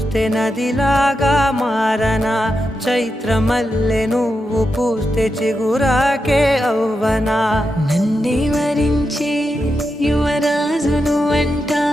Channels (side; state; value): both; normal; correlation 0.87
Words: నదిలాగా మారనా చైత్రమల్లె నువ్వు పూస్తే చిగురాకే అవ్వనా నన్నే వరించే యువరాజును అంట